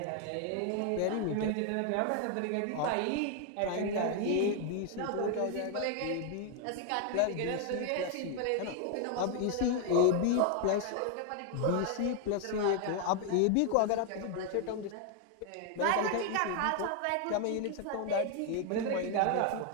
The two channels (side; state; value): both; different; correlation 0.00